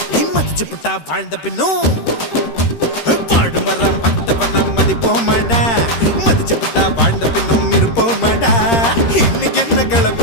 மதிச்சு புட்டா வாழ்ந்த பின்னும் வாழு வர மட்ட பண்ண மதிப்போமடா மதிச்சு புட்டா வாழ்ந்த பின்னும் இருப்போமடா இன்னைக்கு என்ன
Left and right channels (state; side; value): late; right; 13 ms